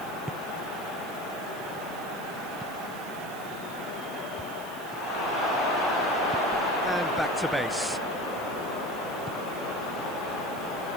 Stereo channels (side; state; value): right; noise; hiss, 16 dB below the sound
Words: And back to base.